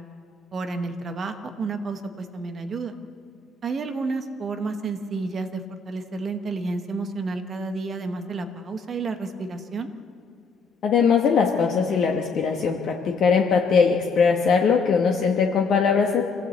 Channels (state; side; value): quieter; right; 4.1 dB